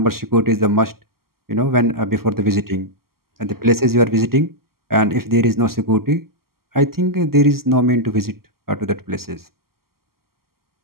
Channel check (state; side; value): late; left; 0.93 ms